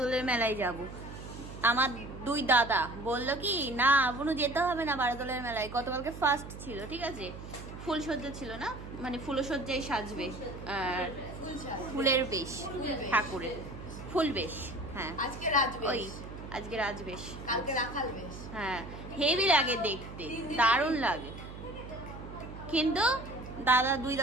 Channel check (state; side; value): noise; right; hum, 12 dB below the sound